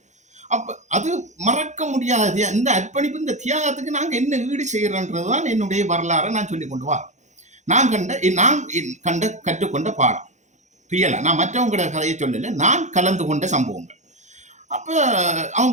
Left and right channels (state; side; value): late; left; 0.34 ms